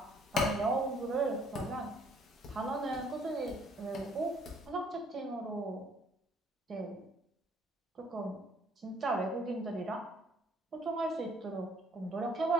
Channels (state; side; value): normal; both; correlation 0.63